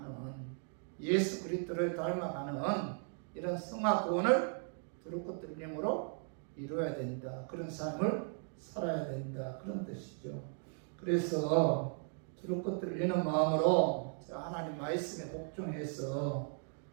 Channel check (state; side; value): silent; left; 53 dB below the other